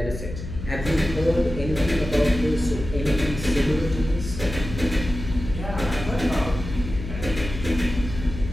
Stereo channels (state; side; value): noise; left; hum, 9 dB below the sound